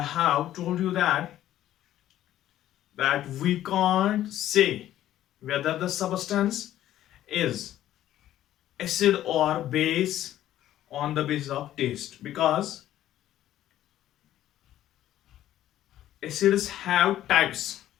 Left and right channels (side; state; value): right; quieter; 12.8 dB